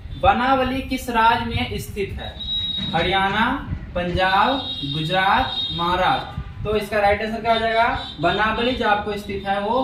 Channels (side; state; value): both; identical; correlation 1.00